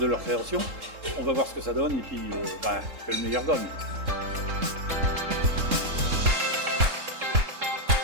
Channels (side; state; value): left; late; 3.7 ms